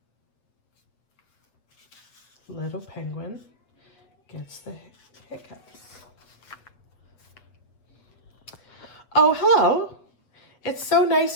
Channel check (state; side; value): late; right; 7.9 ms